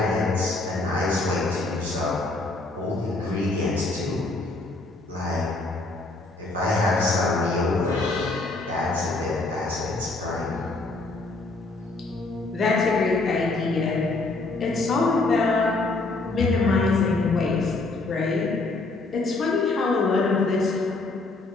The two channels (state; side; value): quieter; right; 3.2 dB